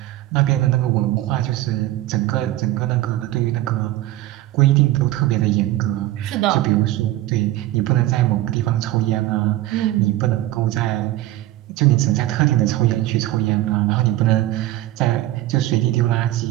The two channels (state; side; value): quieter; left; 15.6 dB